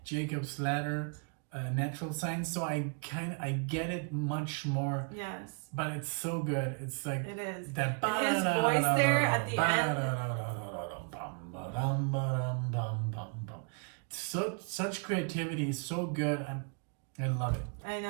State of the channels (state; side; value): quieter; left; 38.4 dB